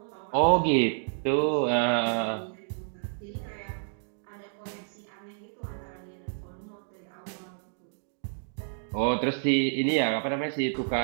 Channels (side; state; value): left; silent; digital silence